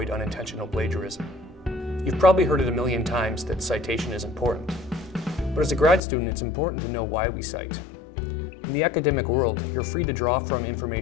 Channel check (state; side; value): drops out; right; at 6.0 s